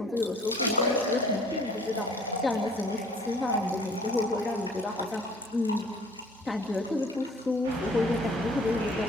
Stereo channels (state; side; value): normal; both; correlation 0.53